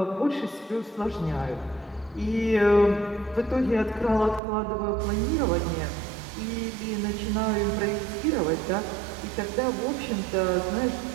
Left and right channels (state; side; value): drops out; left; at 4.4 s